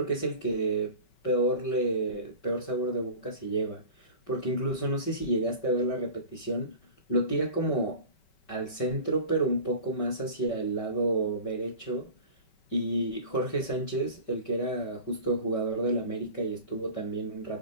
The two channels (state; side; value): late; right; 5.3 ms